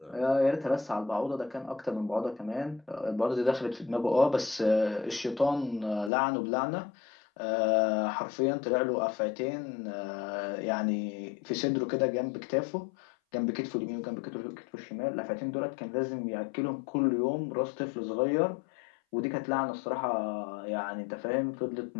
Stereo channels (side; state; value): right; drops out; at 6.1 s